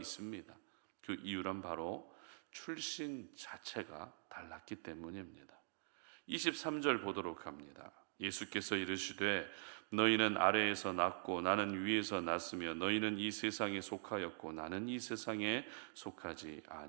그 이유란 바로 출신 자체가 달랐기 때문입니다. 23절 보도록 합니다. 예수께서 이르시되 너희는 아래에서 났고 나는 위에서 났으며 너희는 이 세상에 속하였고 나는 이 세상에 속하지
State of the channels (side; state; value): left; silent; digital silence